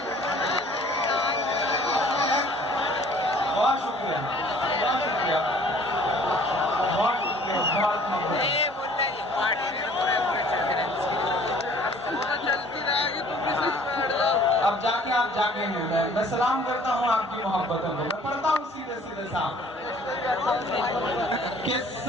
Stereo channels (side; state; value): both; normal; correlation 0.53